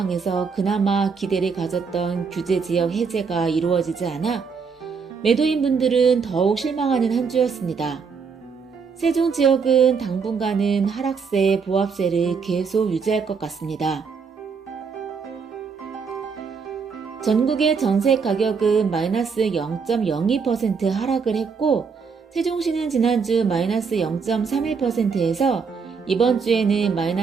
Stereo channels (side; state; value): left; quieter; 5.6 dB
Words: 그나마 기대를 가졌던 규제지역 해제가 이루어지지 않아 매도인분들은 더욱 실망하는 한 주였습니다. 세종 지역은 당분간은 하락세, 보합세를 계속 유지할 것 같습니다. 전국의 전세 가격은 마이너스 0.02% 하락을 했고 세종시는 지난주 마이너스 0.31%에서 이번 주에는